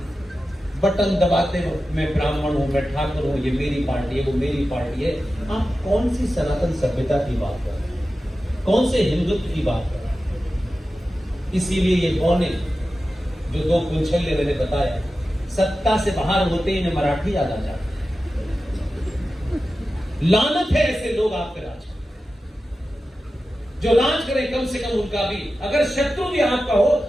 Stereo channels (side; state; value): both; normal; correlation 0.93